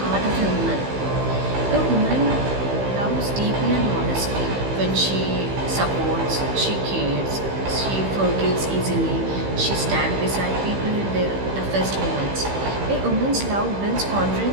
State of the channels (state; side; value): late; left; 15 ms